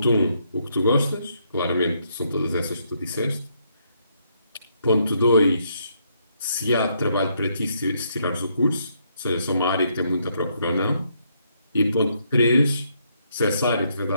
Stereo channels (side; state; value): both; inverted; correlation -0.74